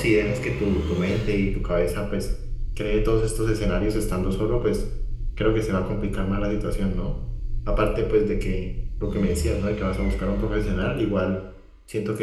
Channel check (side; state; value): both; identical; correlation 1.00